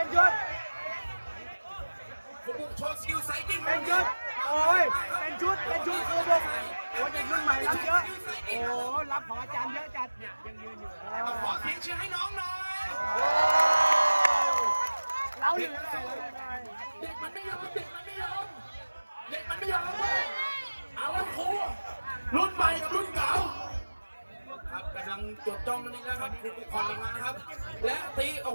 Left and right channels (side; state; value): both; inverted; correlation -1.00